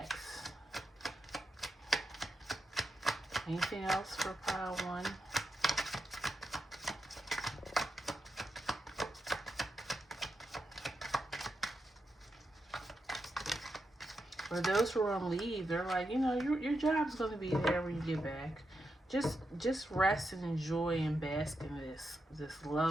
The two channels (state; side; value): normal; both; correlation 0.86